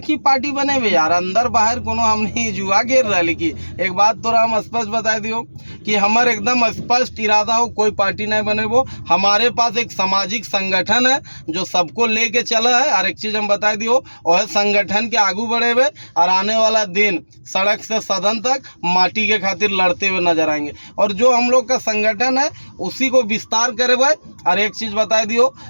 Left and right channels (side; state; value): both; inverted; correlation -1.00